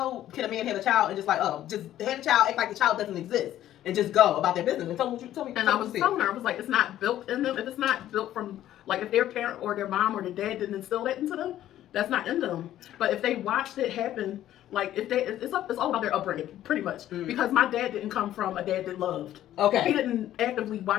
can a man have a child and just like, just have a child, act like the child doesn't exist, and just go about their business. And tell me. And I was telling her, I was like, it's not built in them. If it's not built from, like, if their parent or their mom or their dad didn't instill that into them, that's not in them. But if they watched it happen, like, it's all about their upbringing, pretty much. Because my dad didn't come from a dad that loved. Okay. He didn't actively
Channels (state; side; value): quieter; right; 12.6 dB